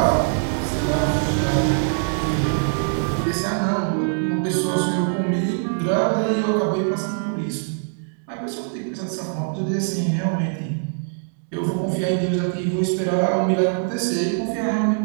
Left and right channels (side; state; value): left; silent; digital silence